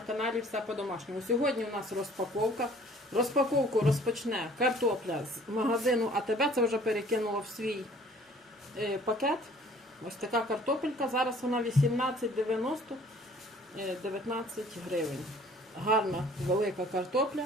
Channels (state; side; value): normal; both; correlation 0.54